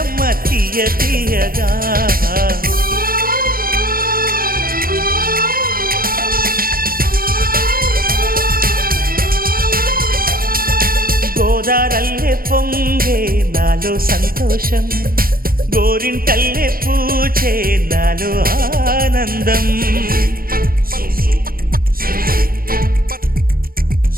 తీయ తీయగా. గోదారల్లే పొంగే నాలో సంతోషం, గోరింటల్లే పూచే నాలో ఆనందం.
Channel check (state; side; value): late; left; 0.42 ms